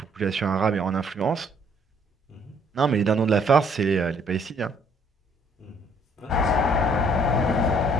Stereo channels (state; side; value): normal; both; correlation 0.63